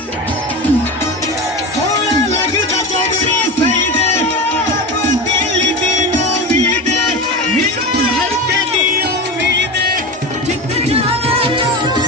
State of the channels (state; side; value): normal; both; correlation 0.25